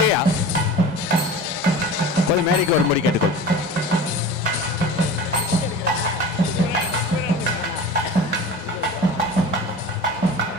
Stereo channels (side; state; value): both; normal; correlation 0.35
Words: கொஞ்சம் மேடைக்கு வரும்படி கேட்டுக்கொள்.